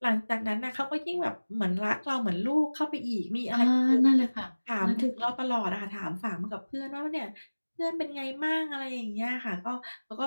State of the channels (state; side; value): inverted; both; correlation -1.00